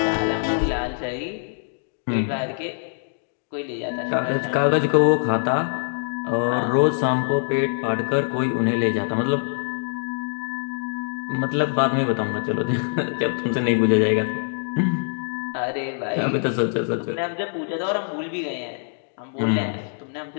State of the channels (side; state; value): right; silent; digital silence